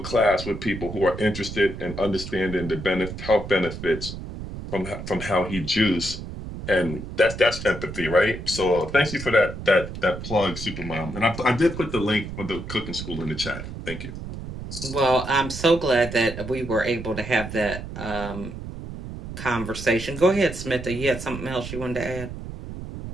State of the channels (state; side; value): noise; right; rumble, 9 dB below the sound